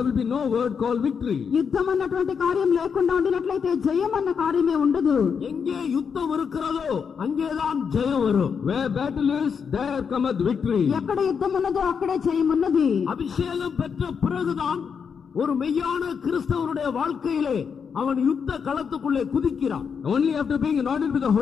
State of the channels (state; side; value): quieter; right; 6.5 dB